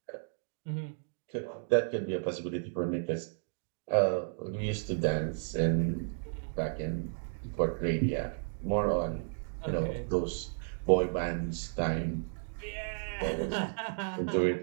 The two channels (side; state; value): left; silent; digital silence